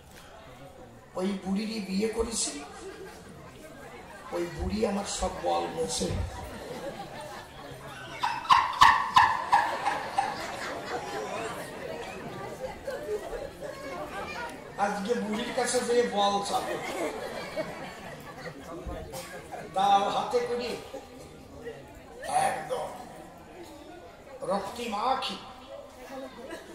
ওই বুড়িরই বিয়ে করেছি, ওই বুড়ি আমার সব বল মেছে। আজকে বুড়ির কাছে যে বল চাবে, দাও হাতে করে একদম রক্তিমাখি,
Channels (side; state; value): both; identical; correlation 1.00